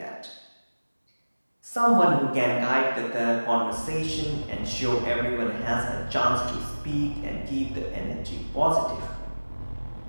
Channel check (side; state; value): both; inverted; correlation -1.00